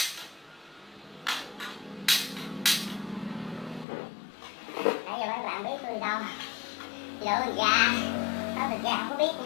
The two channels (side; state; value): right; drops out; at 3.9 s